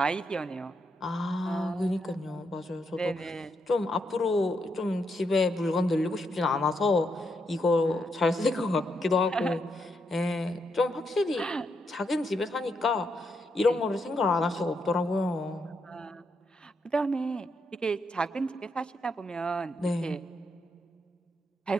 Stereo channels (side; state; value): both; normal; correlation 0.80